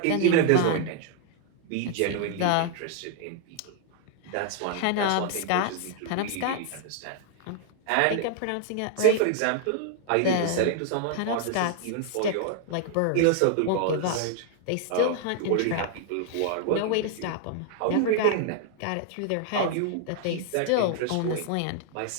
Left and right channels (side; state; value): both; different; correlation 0.00